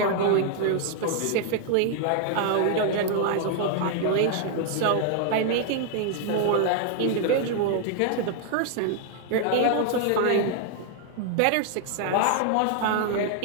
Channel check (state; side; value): different; both; correlation 0.00